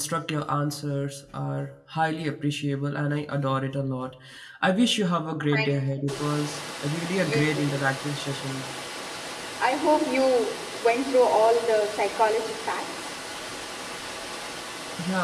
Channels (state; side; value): identical; both; correlation 1.00